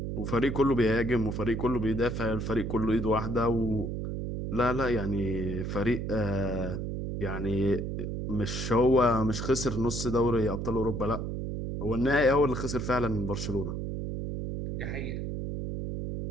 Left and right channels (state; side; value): noise; right; hum, 4 dB below the sound